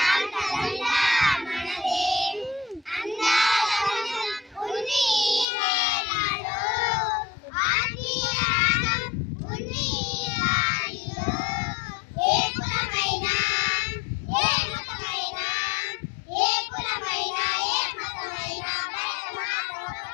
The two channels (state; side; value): drops out; right; at 5.5 s